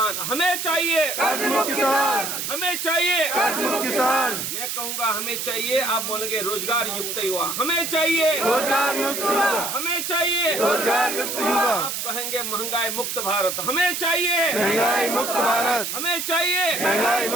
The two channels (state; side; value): noise; right; hiss, 4 dB below the sound